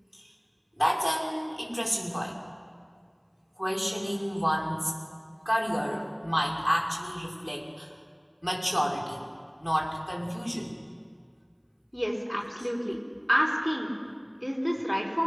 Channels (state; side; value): identical; both; correlation 1.00